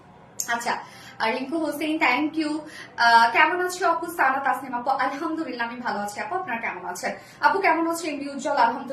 আচ্ছা, রিঙ্কু হোসেন থ্যাংক ইউ। কেমন আছো আপু? সানা তাসনিম আপু, আলহামদুলিল্লাহ আমি ভালো আছি আপু, আপনারা কেমন আছেন? আপু কেমন আছেন? এমডি উজ্জ্বল,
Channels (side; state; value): both; identical; correlation 1.00